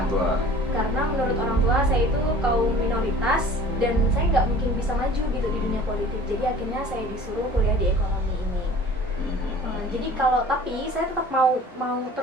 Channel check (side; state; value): both; normal; correlation 0.46